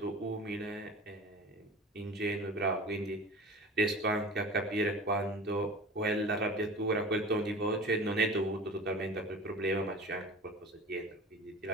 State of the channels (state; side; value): normal; both; correlation 0.37